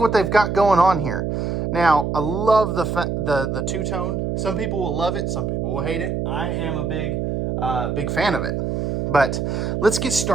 they've got going on here. Now, I love the two-tone. Some people will love it, some people will hate it. I am a big fan of it. But let's get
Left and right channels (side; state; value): right; noise; hum, 1 dB below the sound